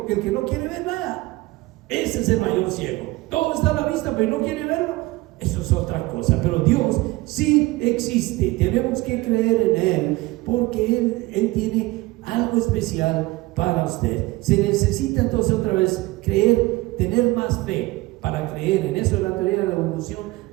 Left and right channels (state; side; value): quieter; left; 20.6 dB